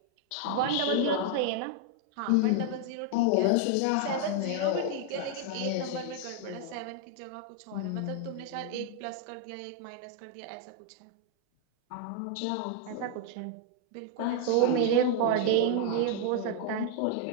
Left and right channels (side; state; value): both; different; correlation 0.00